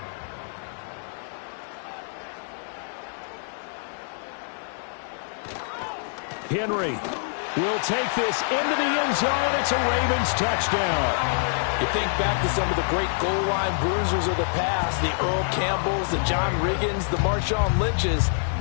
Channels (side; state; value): right; silent; digital silence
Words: Henry will take this into the end zone. It's a Ravens touchdown. You think back to some of the great goal line bruisers of the past, the Earl Campbells, the John Riggins, the Marshawn Lynches.